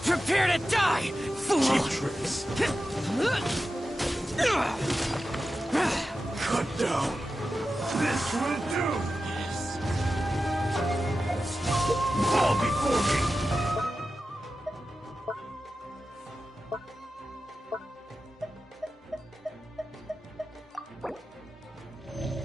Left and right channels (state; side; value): normal; both; correlation 0.92